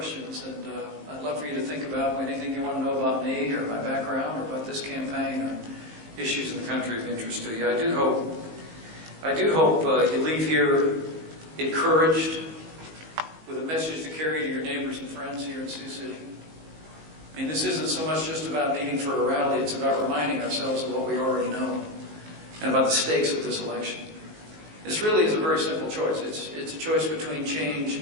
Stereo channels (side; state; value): left; late; 19 ms